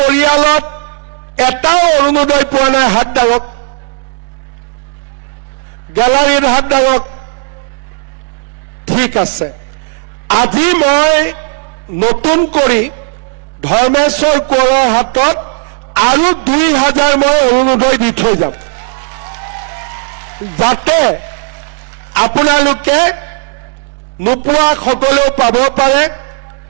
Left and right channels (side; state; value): left; silent; digital silence